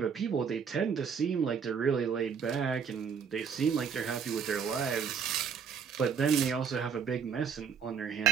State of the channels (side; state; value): left; quieter; 6.7 dB